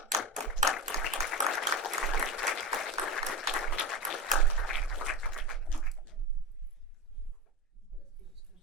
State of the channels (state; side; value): normal; both; correlation 0.20